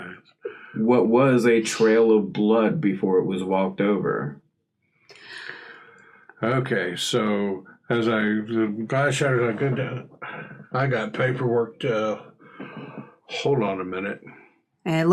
what was a trail of blood before it was walked over. Okay, so as the glass shatters, I got paperwork to hold on a minute. And it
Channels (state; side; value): identical; both; correlation 1.00